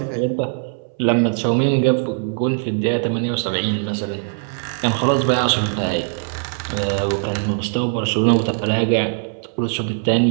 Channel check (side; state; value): left; silent; 61 dB below the other